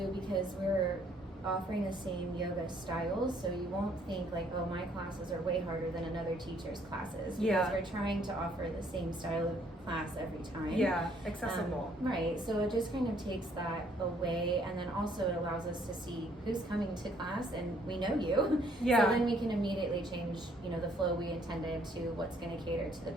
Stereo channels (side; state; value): both; normal; correlation 0.65